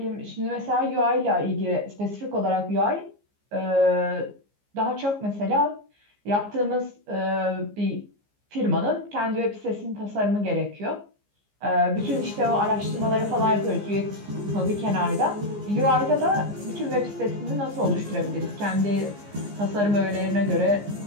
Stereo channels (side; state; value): left; late; 15 ms